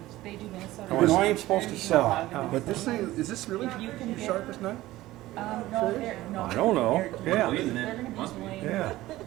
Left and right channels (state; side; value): quieter; left; 16.7 dB